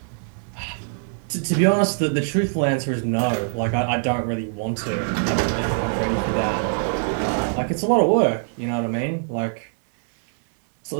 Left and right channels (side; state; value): left; silent; digital silence